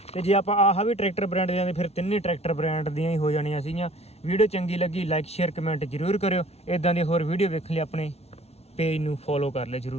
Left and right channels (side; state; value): right; late; 0.31 ms